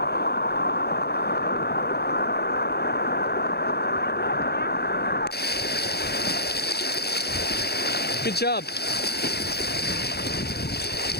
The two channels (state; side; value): late; right; 0.47 ms